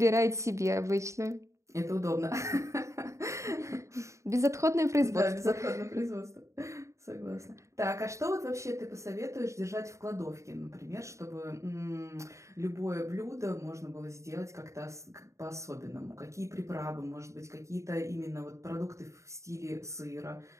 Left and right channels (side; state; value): left; late; 0.14 ms